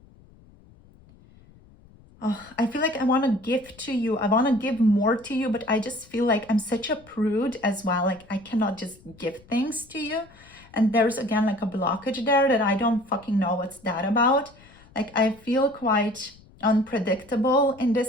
Oh, I feel like I want to give to you. I want to give more to you, but I just feel like I'm such a prude as well. Like I cannot just give things to you. And there's again like a blockage there that I don't fucking know what's that about. Like I feel quite unpredictable in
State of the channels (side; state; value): left; noise; rumble, 26 dB below the sound